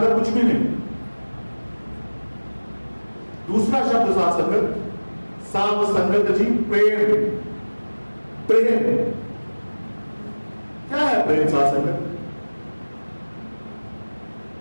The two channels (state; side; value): inverted; both; correlation -1.00